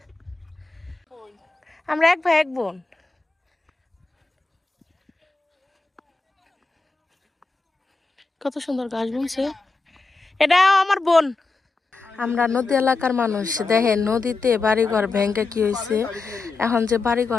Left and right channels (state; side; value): quieter; right; 3.8 dB